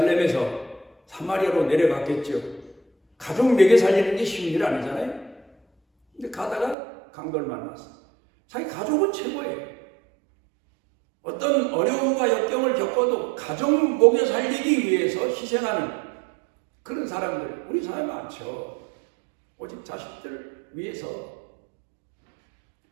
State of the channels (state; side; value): drops out; left; at 6.8 s